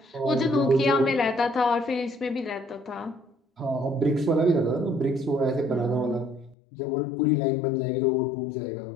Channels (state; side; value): drops out; right; at 6.6 s